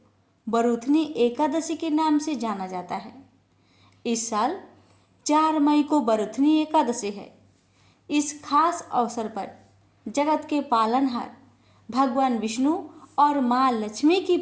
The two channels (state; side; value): identical; both; correlation 1.00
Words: बरूथनी एकादशी के नाम से जाना जाता है। इस साल 4 मई को बरूथनी एकादशी है। इस खास अवसर पर जगत के पालनहार भगवान विष्णु और माँ लक्ष्मी की